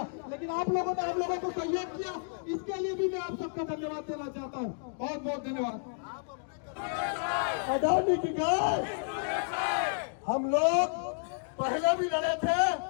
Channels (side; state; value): right; silent; digital silence